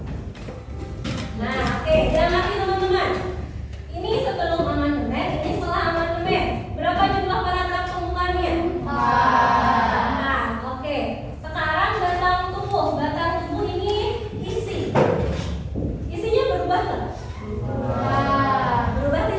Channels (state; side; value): identical; both; correlation 1.00